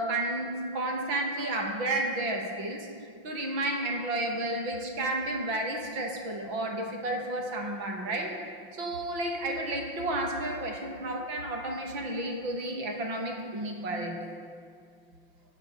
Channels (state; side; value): late; left; 5.7 ms